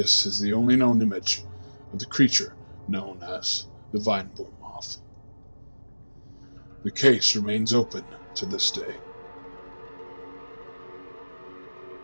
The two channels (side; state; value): both; inverted; correlation -1.00